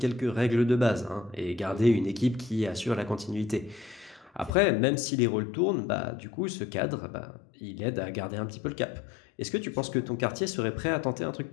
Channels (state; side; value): drops out; right; at 4.5 s